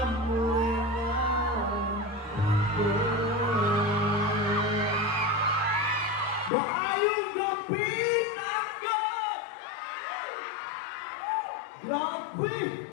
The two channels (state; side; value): drops out; right; at 6.5 s